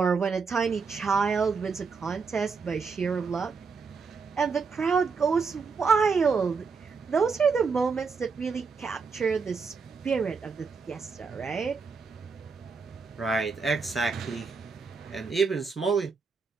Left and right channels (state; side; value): quieter; left; 5.1 dB